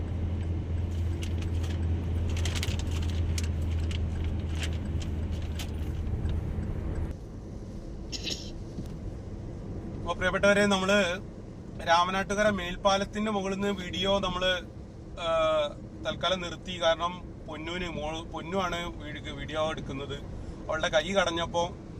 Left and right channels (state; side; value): identical; both; correlation 1.00